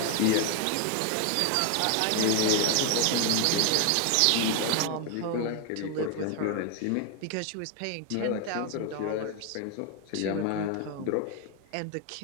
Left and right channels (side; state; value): both; different; correlation 0.01